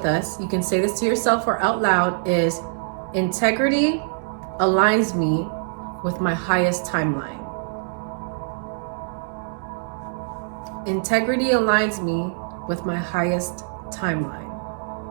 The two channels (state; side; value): silent; left; digital silence